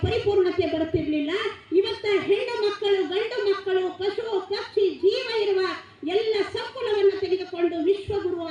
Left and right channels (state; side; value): identical; both; correlation 1.00